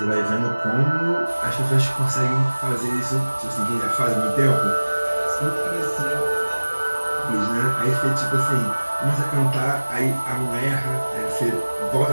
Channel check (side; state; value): both; inverted; correlation -1.00